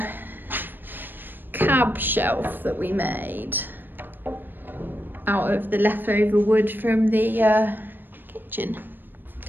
cab shelf that we made out of the leftover wood from the kitchen.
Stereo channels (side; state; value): left; late; 0.094 ms